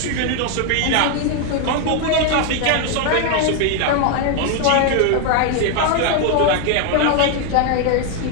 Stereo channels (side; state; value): both; different; correlation 0.01